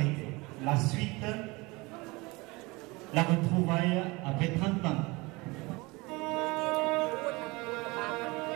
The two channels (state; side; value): quieter; left; 24.3 dB